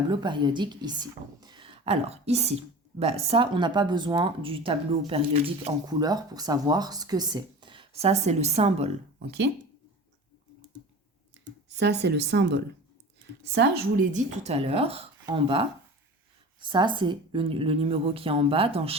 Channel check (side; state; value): both; normal; correlation 0.36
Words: périodique ici. Alors, ici, ça, on n'a pas besoin du tableau périodique en couleur pour savoir ce que c'est. Ça, c'est le symbole, ok? Ça, c'est le symbole. Ça, je vous l'ai dit tout à l'heure, en bas. Ça, c'est le numéro qui est en bas dans